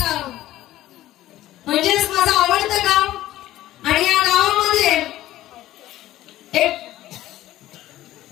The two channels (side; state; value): right; quieter; 14.7 dB